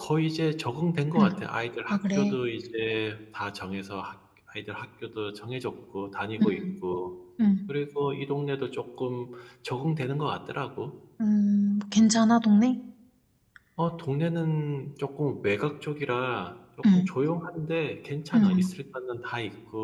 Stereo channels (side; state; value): both; identical; correlation 1.00